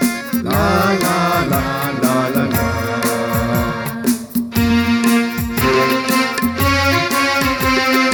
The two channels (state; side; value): identical; both; correlation 1.00